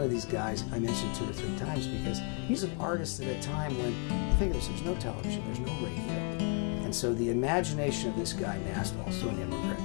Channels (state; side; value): quieter; right; 37.6 dB